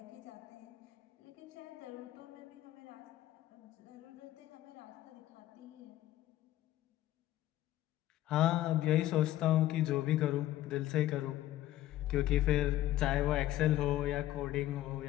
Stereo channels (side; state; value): right; quieter; 14.4 dB